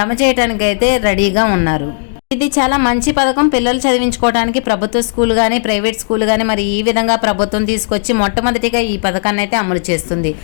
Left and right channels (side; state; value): right; silent; digital silence